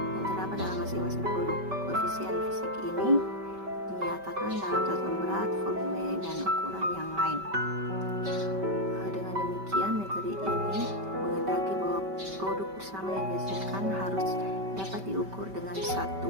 terdapat dalam masing-masing produk. Koefisien fisik ini dinyatakan dalam satuan berat, volume, dan ukuran yang lain. Dengan demikian, metode ini menghendaki bahwa produk bersama yang dihasilkan harus dapat diukur dengan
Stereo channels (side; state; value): left; late; 5.2 ms